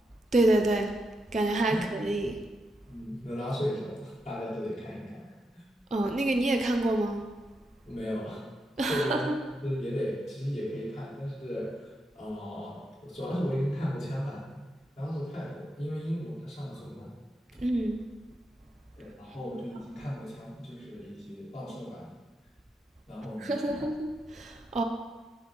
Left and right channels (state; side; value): normal; both; correlation 0.84